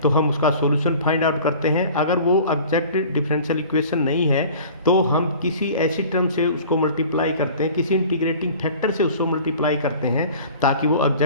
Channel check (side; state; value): both; inverted; correlation -0.44